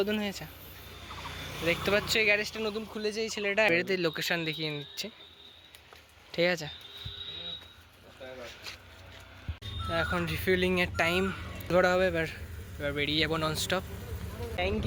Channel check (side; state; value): both; identical; correlation 1.00